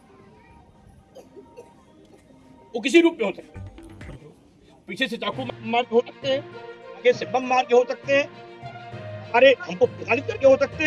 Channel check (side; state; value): both; identical; correlation 1.00